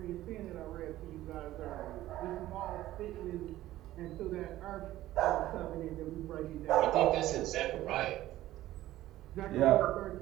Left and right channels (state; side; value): quieter; left; 14.9 dB